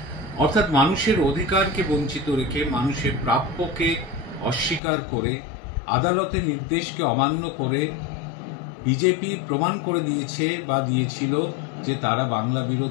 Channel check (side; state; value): right; drops out; at 4.8 s